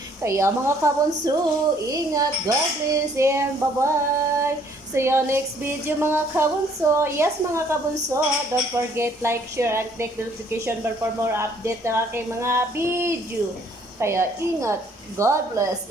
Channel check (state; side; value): normal; both; correlation 0.62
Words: Kaya mga kabunso, ingat, God bless, and bye-bye. See you next video, mga kabunso. Yes, mga kabunso, don't forget like, share, and click the notification bell for more update ng aking mga video. Kaya ingat, God bless,